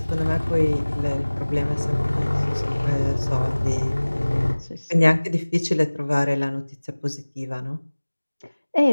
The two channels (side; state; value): both; inverted; correlation -1.00